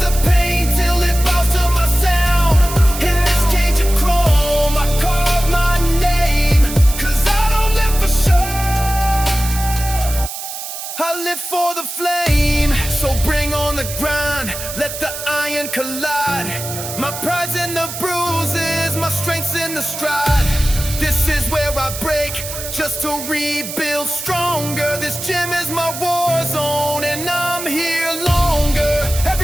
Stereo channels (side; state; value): right; noise; hiss, 8 dB below the sound